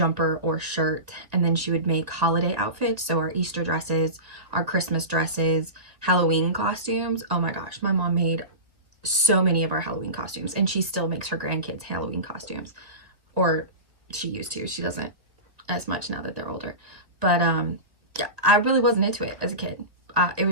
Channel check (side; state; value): left; late; 2.0 ms